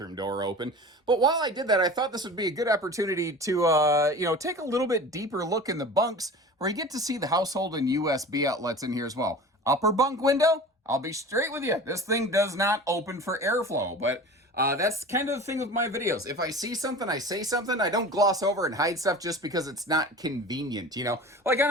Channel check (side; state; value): both; normal; correlation 0.37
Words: door open. But while I did that, I thought this would be a good opportunity to, take a little bit deeper look in the bunks, where you get to see the household and USB outlets in here as well. Upper bunk window, I'll be straight with you. This thing does not open for airflow, but that's kind of the thing with my videos. If I see something, I say something. I don't gloss over and hide stuff just because it's not convenient, Like